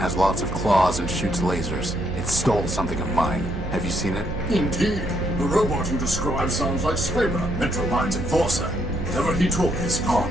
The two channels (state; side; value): noise; right; hum, 7 dB below the sound